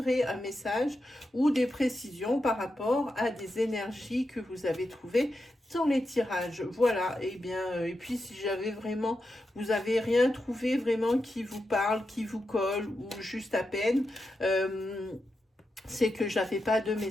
un message ou des précisions par rapport à des énergies que vous avez trouvées dans les tirages. Voilà, et bien, et puis si vous avez rien trouvé vraiment qui vous parle, qui vous colle, ou juste à peine, c'est que j'avais pas de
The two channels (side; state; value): both; normal; correlation 0.88